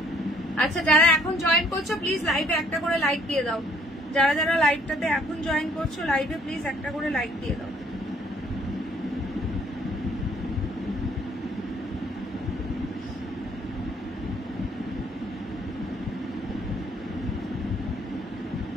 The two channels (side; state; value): both; normal; correlation 0.62